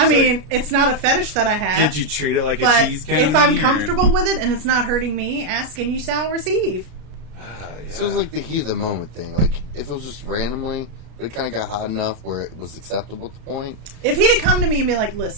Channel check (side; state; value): left; late; 33 ms